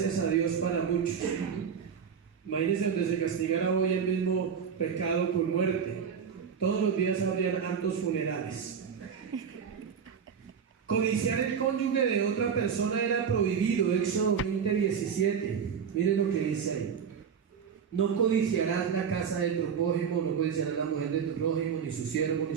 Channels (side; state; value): left; quieter; 7.1 dB